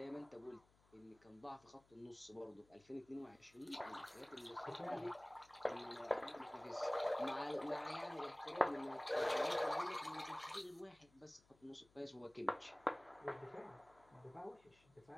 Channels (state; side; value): noise; left; hum, 29 dB below the sound